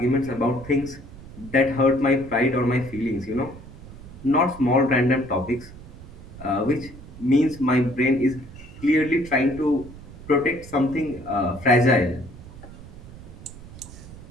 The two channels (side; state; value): right; noise; rumble, 16 dB below the sound